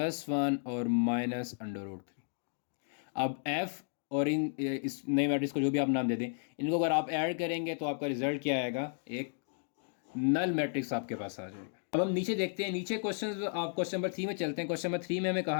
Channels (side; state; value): right; silent; digital silence